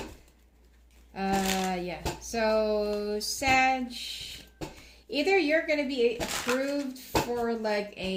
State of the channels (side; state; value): both; identical; correlation 1.00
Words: Yeah. So, Sag, either you're going to be approved for like